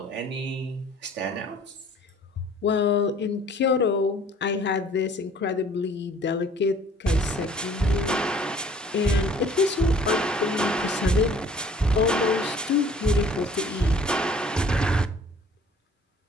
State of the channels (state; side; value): normal; both; correlation 0.53